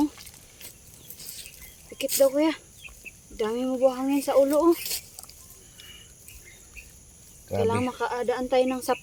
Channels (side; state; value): both; identical; correlation 1.00